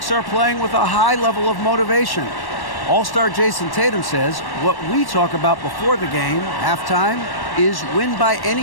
are playing with a high level of motivation. All-star Jason Tatum says what we talk about before the game, halftime, is win by any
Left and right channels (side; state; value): right; late; 1.1 ms